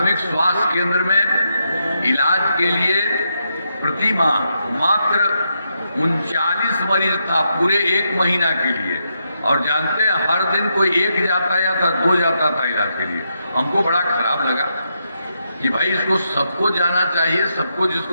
स्वास्थ्य केंद्र में इलाज के लिए प्रति माह मात्र 39 मरीज था पूरे 1 महीना के लिए, और जानते हैं हर दिन कोई 1 जाता या था 2 जाता था इलाज के लिए। हमको बड़ा खराब लगा कि भाई इसको सबको जाना चाहिए, सबको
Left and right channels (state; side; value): inverted; both; correlation -0.82